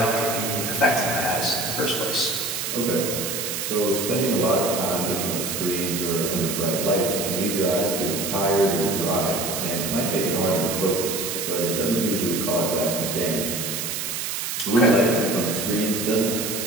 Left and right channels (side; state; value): right; noise; hiss, 3 dB below the sound